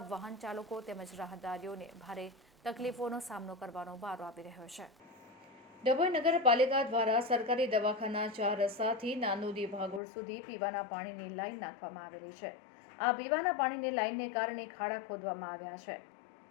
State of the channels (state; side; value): drops out; right; at 10.0 s